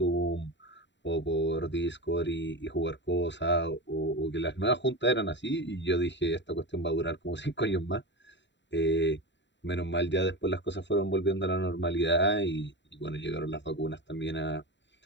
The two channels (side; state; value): right; late; 0.52 ms